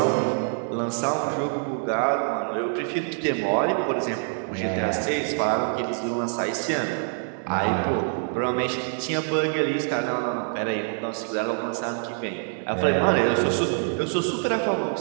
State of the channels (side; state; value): left; silent; 60 dB below the other